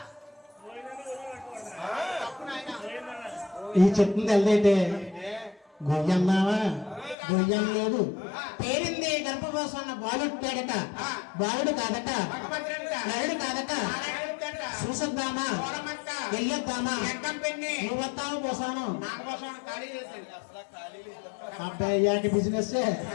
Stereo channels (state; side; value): drops out; right; at 7.2 s